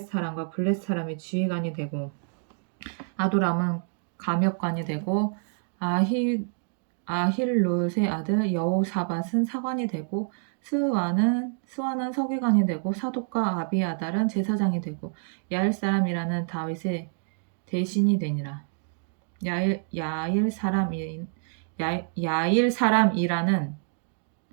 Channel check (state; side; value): silent; left; 60 dB below the other